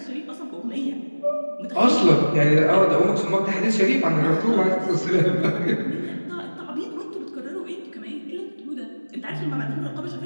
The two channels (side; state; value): both; inverted; correlation -1.00